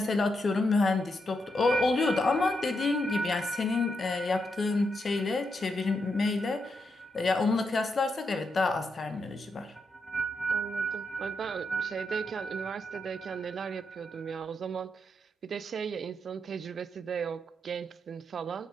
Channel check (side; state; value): both; normal; correlation 0.83